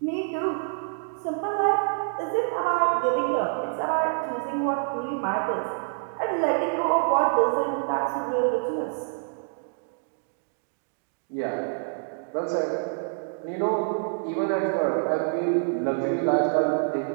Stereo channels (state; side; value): silent; left; digital silence